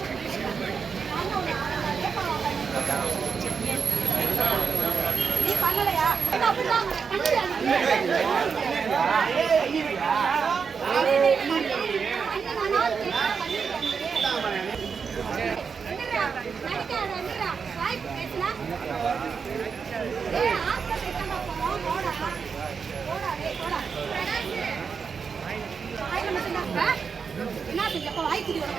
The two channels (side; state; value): left; quieter; 5.9 dB